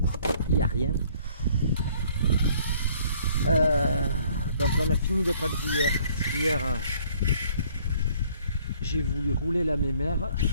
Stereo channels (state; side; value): inverted; both; correlation -0.60